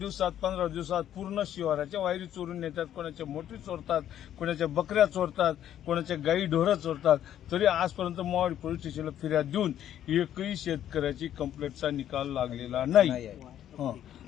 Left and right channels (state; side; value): quieter; right; 11.0 dB